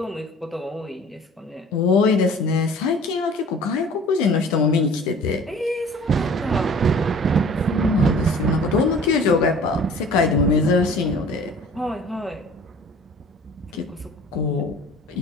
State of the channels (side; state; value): both; normal; correlation 0.47